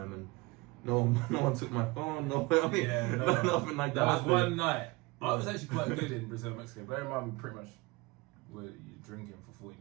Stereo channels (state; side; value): quieter; left; 23.8 dB